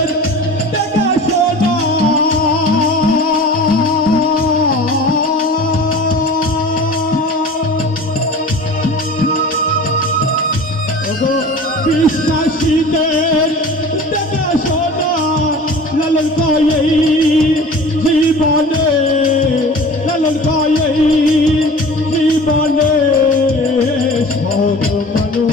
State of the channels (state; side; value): normal; both; correlation 0.39